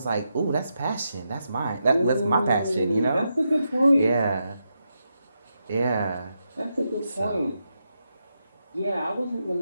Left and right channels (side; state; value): both; inverted; correlation -0.85